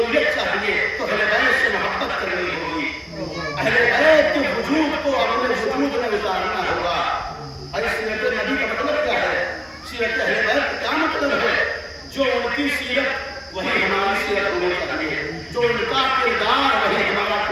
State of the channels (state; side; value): identical; both; correlation 1.00